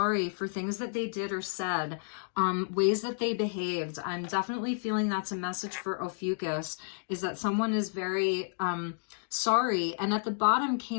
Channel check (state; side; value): silent; right; digital silence